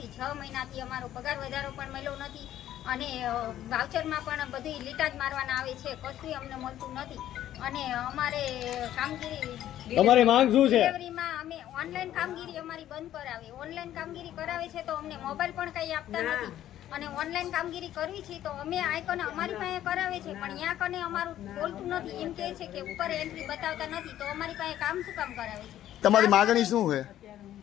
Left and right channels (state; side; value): quieter; right; 12.3 dB